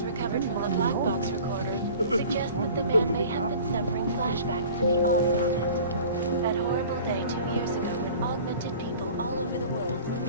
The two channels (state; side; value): inverted; both; correlation -0.44